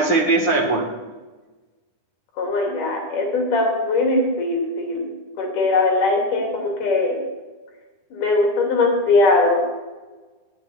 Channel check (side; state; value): right; late; 9.7 ms